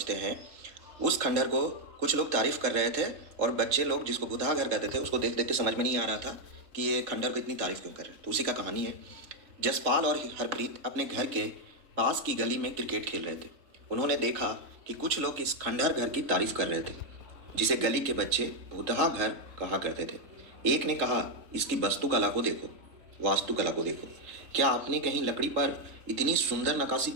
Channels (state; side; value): late; left; 3.8 ms